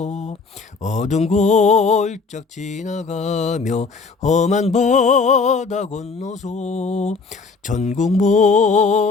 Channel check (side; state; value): right; quieter; 4.6 dB